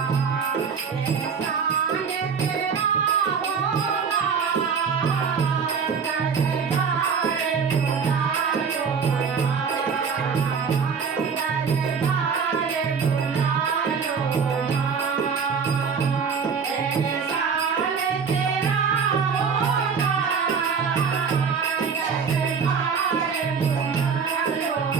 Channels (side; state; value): left; quieter; 6.0 dB